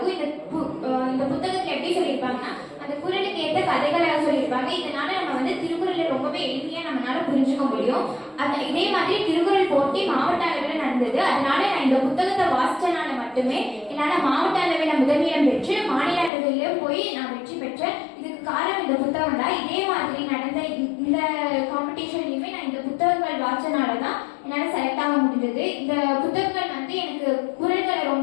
இந்த புத்தகத்துல எப்படி சொல்லியிருப்பாங்கன்னா அந்த குறளுக்கு ஏற்ற கதைகளை சொல்லியிருப்பாங்க. இதனால நம்ம வந்து திருக்குறளை ரொம்பவே எளிமையா நம்மளால புரிஞ்சுக்க முடியும். இதே மாதிரி திருக்குறள் போட்டி மாவட்ட அளவில் நடந்தது. அதனால நான் இந்த புத்தகத்தை வாசிச்சனால மட்டுமே என்னால மாவட்ட அளவில் முதலிடம் பெற்று மாநில அளவிலும் போய் நான் வெற்றி பெற்றேன். இதுக்கு காரணம் இந்த புத்தகம் தான். இதே மாதிரி நடந்த இந்த காம்படிஷன்லயுமே நான் இந்த புத்தகங்கள் வாசிச்சனாலதான் என்னால செலக்ட் ஆக முடிஞ்சது. இந்த புத்தகங்கள் வந்து எனக்கு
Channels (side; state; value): right; drops out; at 16.3 s